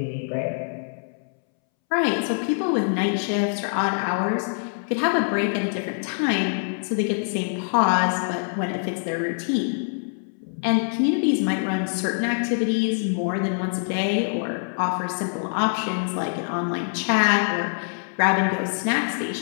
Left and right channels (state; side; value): silent; right; 62 dB below the other